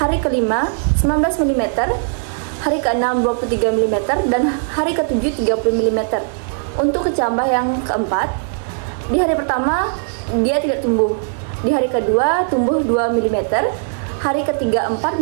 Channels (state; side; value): silent; left; digital silence